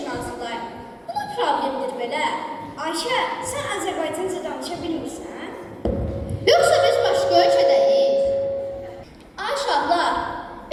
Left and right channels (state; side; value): identical; both; correlation 1.00